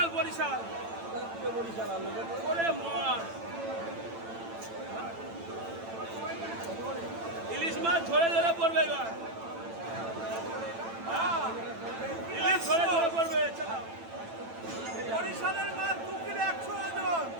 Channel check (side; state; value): left; late; 8.9 ms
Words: বরিশাল। ওরে মাছ, ইলিশ মাছ ধরে ধরে পড়বে এবার, ইলিশ ধরে ধরে পড়বে। চালাও, বরিশালের মাছ 2 কিলো 100 ওজন।